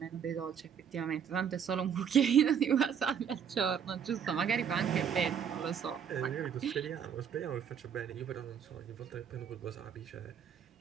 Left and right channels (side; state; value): left; quieter; 7.9 dB